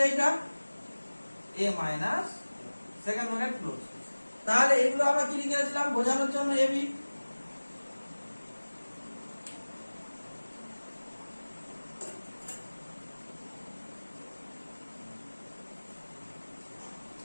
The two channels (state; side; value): inverted; both; correlation -1.00